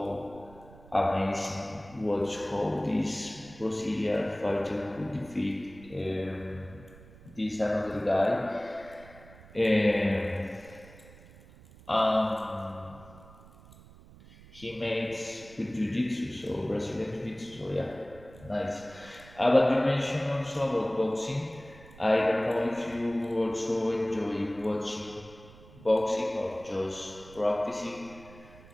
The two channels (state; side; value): noise; right; rumble, 21 dB below the sound